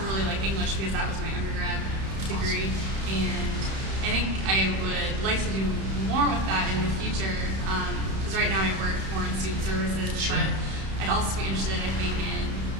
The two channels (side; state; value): left; late; 31 ms